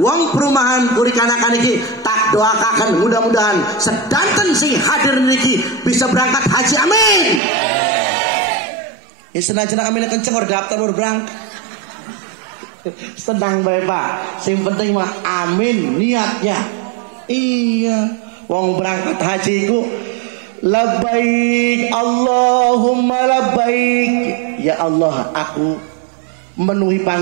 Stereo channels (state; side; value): drops out; left; at 7.4 s